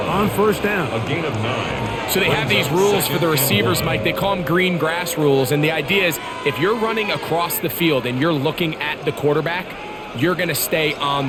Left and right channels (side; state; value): both; identical; correlation 1.00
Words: on first down. A gain of 9. So they have these rules for the receivers, Mike. They call them green grass rules, and the idea is if you're running across the field and you're looking at the quarterback, you're going to stay on